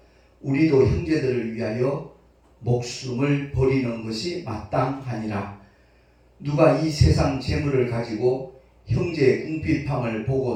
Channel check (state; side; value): identical; both; correlation 1.00